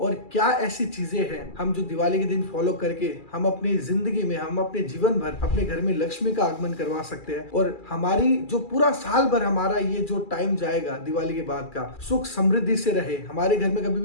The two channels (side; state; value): right; late; 2.4 ms